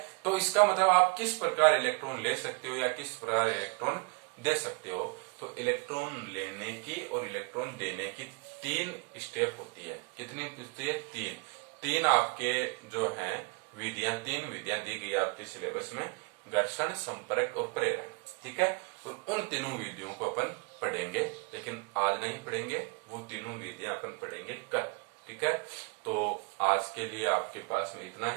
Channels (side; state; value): left; quieter; 34.0 dB